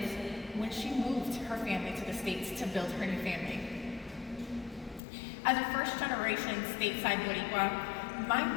when she moved her family to the States to build her new family. As a first-generation stateside Boricua, my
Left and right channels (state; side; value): drops out; right; at 5.0 s